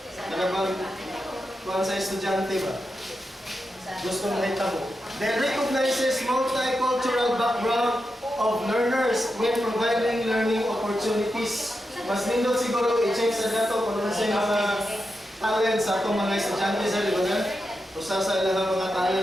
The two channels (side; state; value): both; normal; correlation 0.88